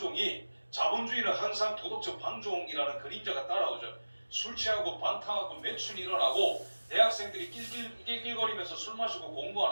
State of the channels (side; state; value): both; inverted; correlation -1.00